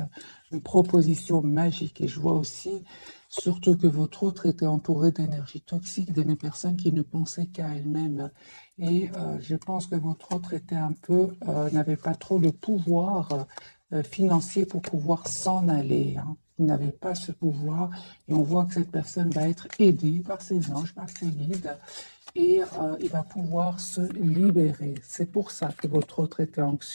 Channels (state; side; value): inverted; both; correlation -1.00